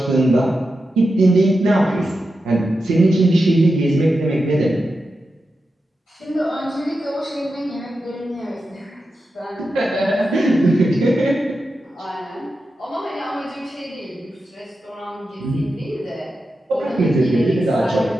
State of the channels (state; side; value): normal; both; correlation 0.90